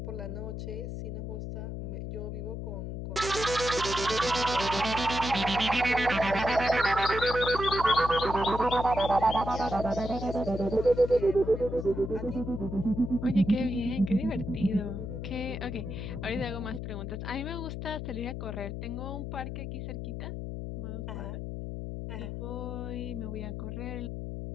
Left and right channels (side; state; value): left; noise; hum, 6 dB below the sound